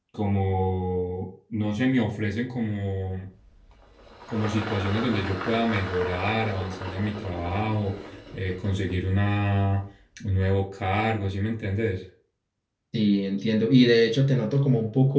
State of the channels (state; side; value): identical; both; correlation 1.00